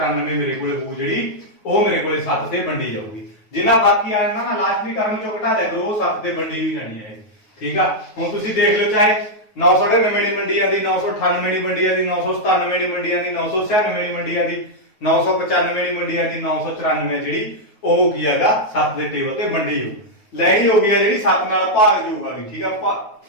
ਮੇਰੇ ਕੋਲੇ ਹੋਊ, ਜਿਹੜੀ ਉਹ ਮੇਰੇ ਕੋਲੇ 7 ਤੇ ਵੰਡੀ ਜਾਊਗੀ। ਜਿੰਨਾ ਬਾਕੀ ਆ ਜਾਂਦਾ ਨਾ ਲਾਸਟਲੀ ਟਰਮ ਚੋਂ ਘਟਾ ਦਿਆ ਕਰੋ, ਉਹ 7 ਤੇ ਵੰਡੀ ਵੀ ਜਾਣੀ ਹੈ। ਠੀਕ ਆ, ਹੁਣ ਤੁਸੀਂ ਦੇਖ ਲਓ ਚਾਹੇ 999 ਦੀ ਮੰਡੀ ਆਂਦੀ, 998 ਦੀ ਮੰਡੀ ਆਂਦੀ, 997 ਦੀ ਮੰਡੀ ਆਂਦੀ, 996 ਦੀ ਮੰਡੀ ਆਂਦੀ, 995 ਦੀ ਮੰਡੀ ਆਂਦੀ, 994 ਜਿਹੜੀ ਉਹ ਕੀ ਹੈਗਾ 7 ਦੇ ਟੇਬਲ ਤੇ ਵੰਡੀ ਹੋ ਲੈਣੀ ਹੋ ਗਈ ਆ, ਜਿਹੜੀ 7 ਨਾਲ ਭਾਗਯੋਗ ਆ ਗਈ। ਠੀਕ ਆ,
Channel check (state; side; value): late; right; 9.4 ms